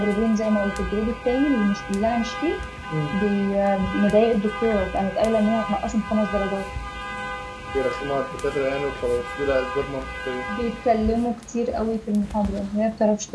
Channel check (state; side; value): identical; both; correlation 1.00